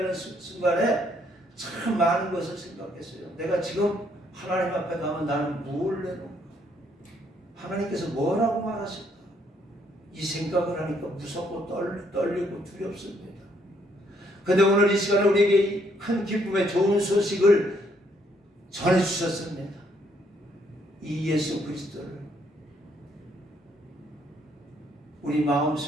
순간에 참 많은 것을 생각했어요. 내가 지금 하나님 앞에 가면 나는 뭘 내놓을까? 하나님께서 뭐라고 말하실까? 이 생각을 하니까 무섭고 떨리고 두렵습니다. 그런데 오늘 이 시간에 우리에게 이 큰 기쁨의 좋은 소식을 전해주셨습니다. 이 예수 그리스도를 우리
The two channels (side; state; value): both; normal; correlation 0.70